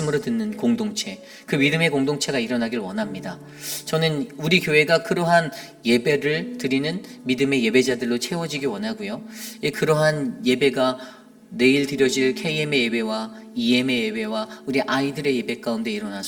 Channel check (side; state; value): both; identical; correlation 1.00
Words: 듣는 공동체, 그 믿음의 공동체가 일어나길 원합니다. 저는 우리 교회가 그러한 예배를 드리는 믿음의 예배자들로 채워지기 원하고요. 그러한 예배가 내일 드려질 KM의 예배와 EM의 예배와 우리 아이들의 예배 가운데